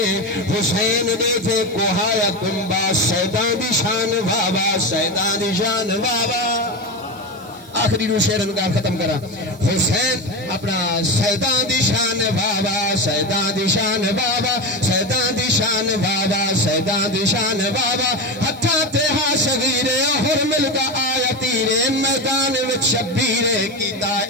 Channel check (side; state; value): right; noise; hiss, 24 dB below the sound